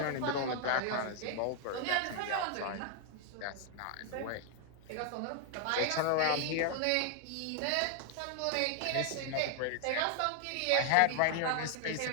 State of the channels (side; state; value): both; different; correlation 0.00